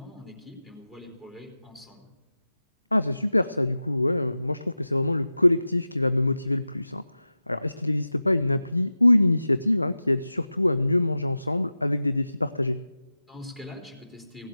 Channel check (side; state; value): both; inverted; correlation -0.95